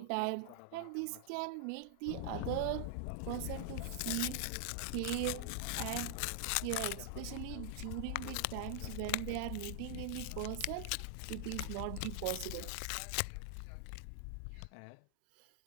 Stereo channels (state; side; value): different; both; correlation 0.00